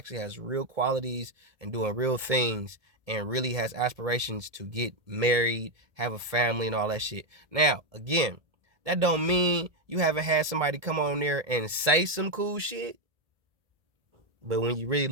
has real qualities and doing real things and really has aspirations to get married, have a family and all that shit? Now, again, that don't mean you haven't had somebody come on there and say some cool shit. But when you really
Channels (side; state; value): left; late; 1.7 ms